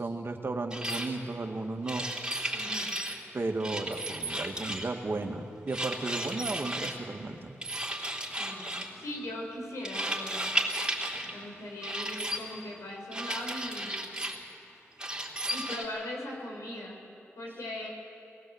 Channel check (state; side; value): normal; both; correlation 0.61